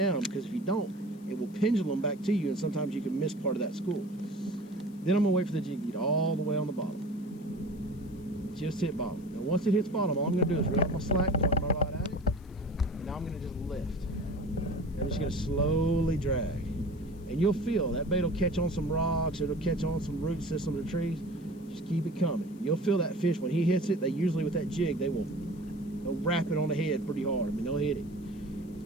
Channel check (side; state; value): left; noise; hiss, 29 dB below the sound